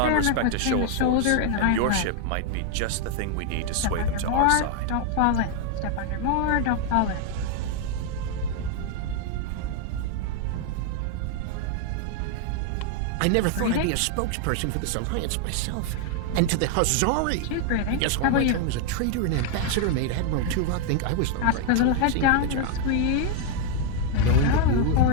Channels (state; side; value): different; both; correlation 0.00